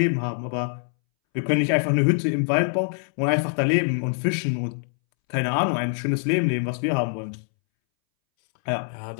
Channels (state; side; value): silent; right; 63 dB below the other